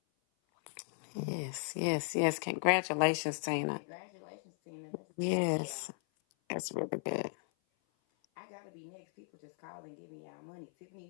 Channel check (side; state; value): right; silent; 53 dB below the other